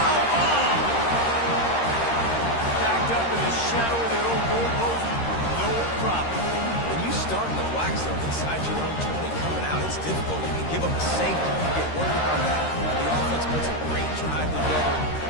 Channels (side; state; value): right; late; 13 ms